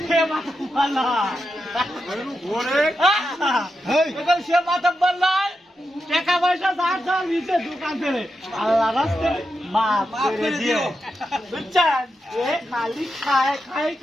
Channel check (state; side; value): normal; both; correlation 0.87